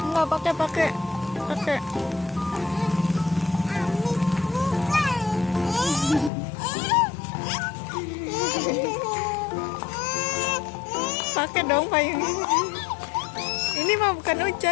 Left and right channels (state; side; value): drops out; right; at 6.3 s